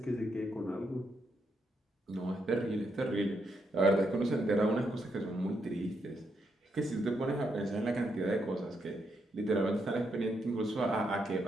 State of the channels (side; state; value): both; normal; correlation 0.79